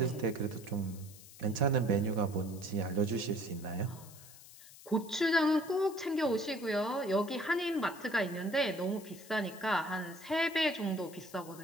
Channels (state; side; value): noise; left; hiss, 19 dB below the sound